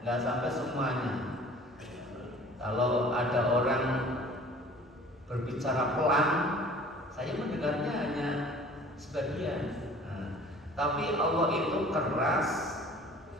sampai semuanya. Kalau ada orang berbicara pelan, saya mendengarnya hanya sebagian. Nah, tapi Allah itu keras,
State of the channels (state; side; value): normal; both; correlation 0.48